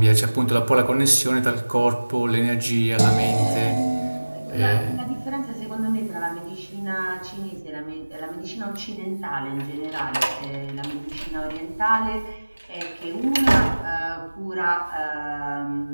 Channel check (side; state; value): both; inverted; correlation -1.00